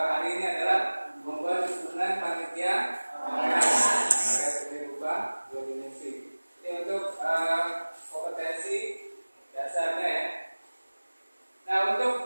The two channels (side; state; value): both; inverted; correlation -1.00